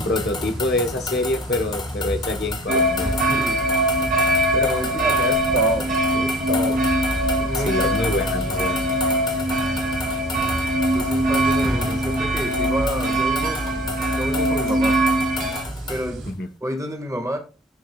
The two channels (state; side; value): normal; both; correlation 0.44